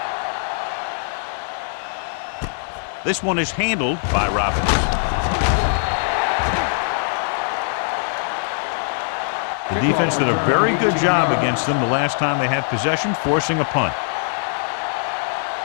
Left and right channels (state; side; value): silent; right; digital silence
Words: This one is handled by Robbins. The defense did a very good job against them the last time they had possession, forcing a punt.